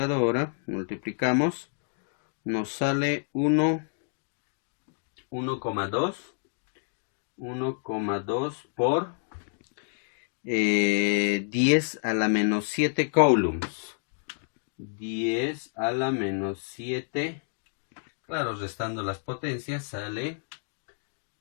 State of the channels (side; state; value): right; silent; digital silence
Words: multiplicamos, nos sale 1,2 por 10 a la menos 7 coulombs. 10 a la menos 7, claro, restando las potencias sale